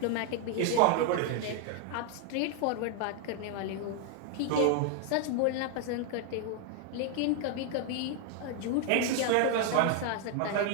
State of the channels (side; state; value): both; different; correlation 0.00